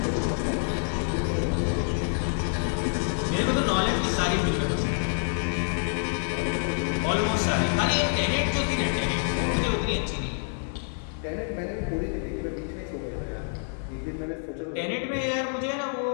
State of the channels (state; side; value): silent; right; 60 dB below the other